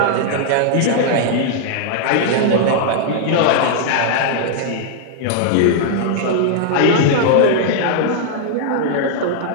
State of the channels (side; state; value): both; different; correlation -0.01